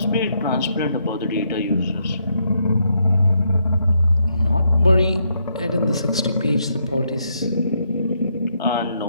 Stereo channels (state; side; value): inverted; both; correlation -0.77